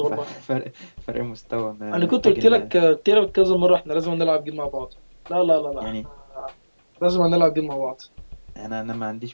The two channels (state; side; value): inverted; both; correlation -1.00